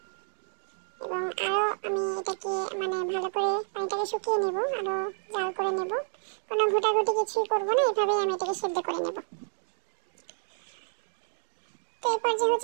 এবং আরও আমি এটাকে ভালো করে পানিটাকে শুকিয়ে নেব, আরও জাল করে নেব। কোনো ঘোটাঘুটি কিছুই করবো না, এভাবেই আমি এটাকে সেদ্ধ করে নেব। তো এরপর যে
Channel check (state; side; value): silent; left; 58 dB below the other